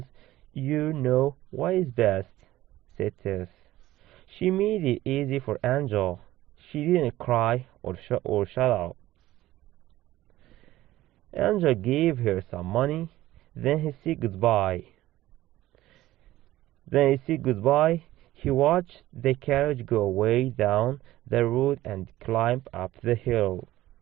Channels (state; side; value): quieter; left; 15.7 dB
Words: you know what is best, said Tess. She made it easy for Angel. She didn't cry or shut up. Angel gave her some money, then he said goodbye. He watched the carriage go way down the road and climb up the hill.